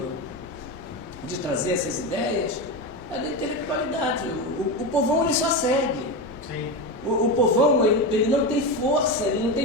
de trazer essas ideias é da intelectualidade. O povão ele só segue. Sim. O povão ele não tem força, ele não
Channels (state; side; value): normal; both; correlation 0.17